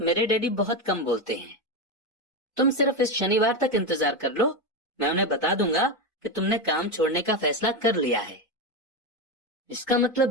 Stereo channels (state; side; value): normal; both; correlation 0.13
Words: मेरे डैडी बहुत कम बोलते हैं। तुम सिर्फ इस शनिवार तक इंतजार कर लो, मैं उन्हें बता दूंगा कि तुमने काम छोड़ने का फैसला कर लिया है। इसका